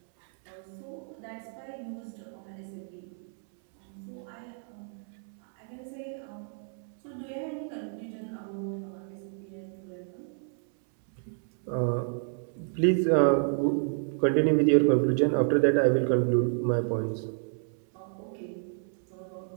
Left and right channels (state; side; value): silent; left; 58 dB below the other